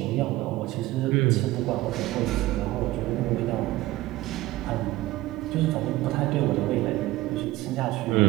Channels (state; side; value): quieter; left; 17.6 dB